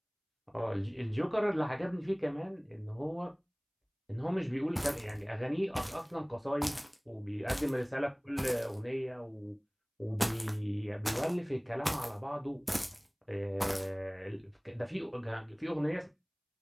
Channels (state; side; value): identical; both; correlation 1.00